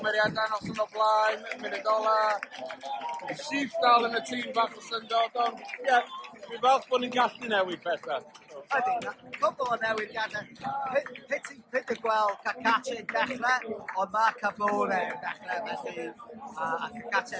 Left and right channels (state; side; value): identical; both; correlation 1.00